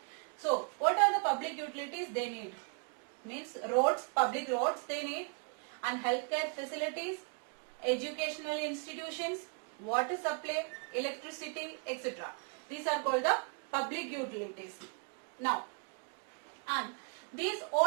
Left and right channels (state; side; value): quieter; left; 38.6 dB